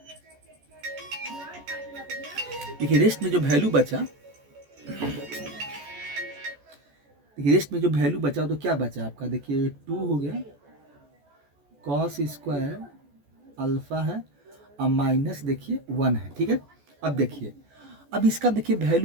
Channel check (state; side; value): late; left; 14 ms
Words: देखिए रेस्ट में जो वैल्यू बचा, देखिए रेस्ट में जो वैल्यू बचा तो क्या बचा आपका, देखिए 2 हो गया कॉस स्क्वायर अल्फा है और माइनस देखिए 1 है। ठीक है, अब देखिए अब इसका देखिए